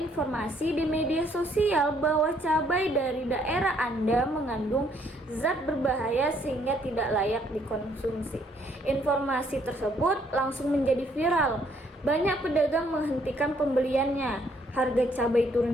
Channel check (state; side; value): normal; both; correlation 0.67